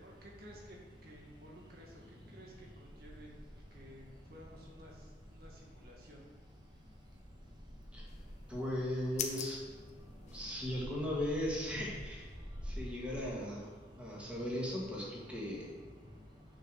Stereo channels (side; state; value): both; normal; correlation 0.64